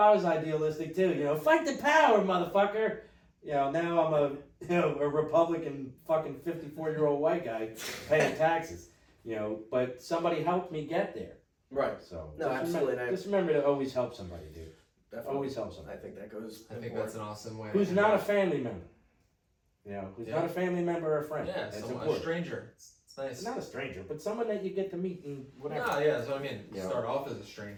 was idealistic too, fight the power, motherfucker. Now I'm a Republican fucking 54-year-old white guy paying taxes, but somebody helped me get there. Right. So No, absolutely. Just remember to always help somebody, dude. Definitely. Always help somebody. I think that goes. I think that's an awesome way. Who's not a family member. Who's not a family member or a friend. Yeah, That's a important. stranger. It's nice. It's not a stranger, but someone that you get to meet and whatever. No, yeah, that's what I mean. Yeah. Start off as a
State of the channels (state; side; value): identical; both; correlation 1.00